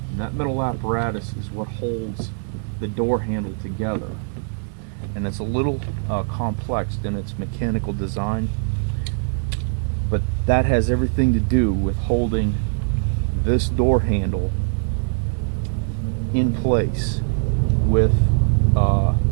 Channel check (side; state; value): left; silent; 58 dB below the other